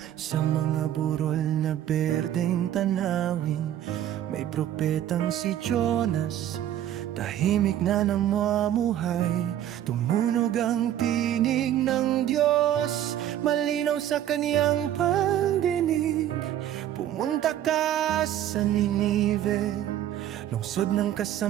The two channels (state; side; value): quieter; left; 11.6 dB